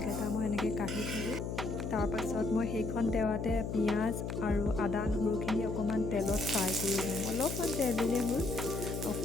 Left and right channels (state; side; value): noise; left; hum, 4 dB below the sound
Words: মই এনেকৈ কাঢ়ি থ'লোঁ। তাৰপাছত মই সেইখন তেৱাতে পিঁয়াজ আৰু আদা নহৰুখিনি অকণমান তেলত ফ্ৰাই কৰি ল'ম। অলপমান তেল দিলেই হ'ল,